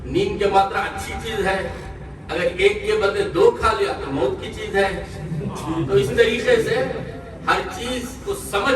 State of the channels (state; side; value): identical; both; correlation 1.00